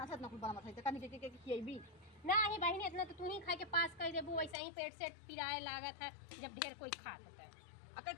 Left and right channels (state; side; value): drops out; right; at 4.5 s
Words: साथ ना कुछ बना मत है कनी के खिएबी ना ही बहनी इतना तो तू ही खा के पास कर देबू वैसा ही पेट से पिराए लागत है जब ढेर कोई खात है अकर